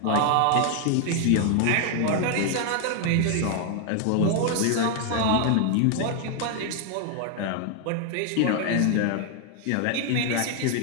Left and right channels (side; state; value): both; different; correlation 0.00